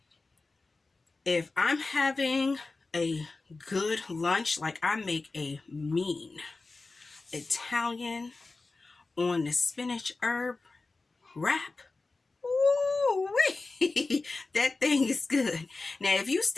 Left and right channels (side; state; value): right; quieter; 3.6 dB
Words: if I'm having a good lunch, like I make a mean Italian on the spinach herb wrap. Ooh-wee. That thing is good. Now, if you